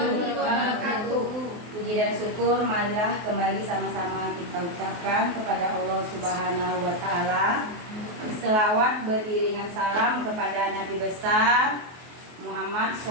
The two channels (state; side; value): late; left; 23 ms